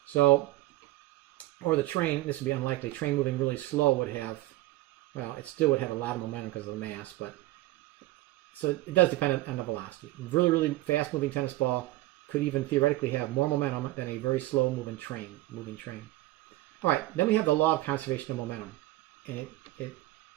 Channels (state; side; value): quieter; left; 17.5 dB